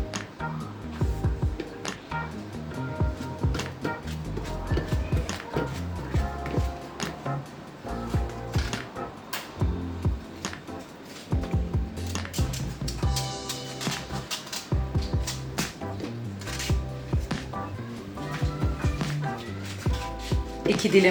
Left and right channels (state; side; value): identical; both; correlation 1.00